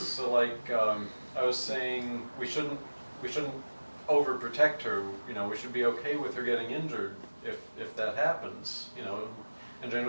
like, I was saying we shouldn't overprotect her. You know, we should be okay with her getting injured if that happens. You know, and Jane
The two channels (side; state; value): both; inverted; correlation -1.00